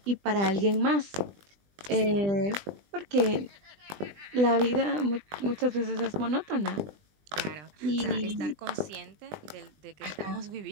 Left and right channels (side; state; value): left; late; 20 ms